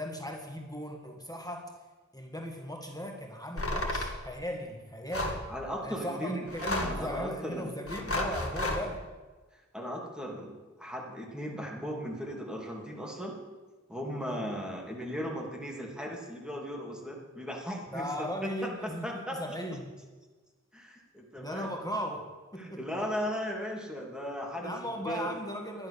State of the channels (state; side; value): normal; both; correlation 0.49